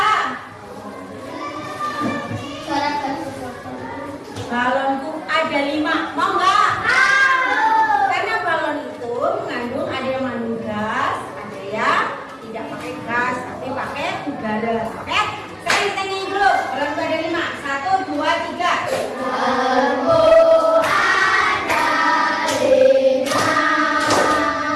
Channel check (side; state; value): both; identical; correlation 1.00